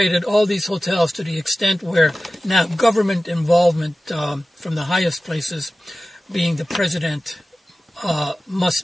all these hotels to the extent where now government involvement from the highest places, being the president,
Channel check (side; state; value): both; normal; correlation 0.96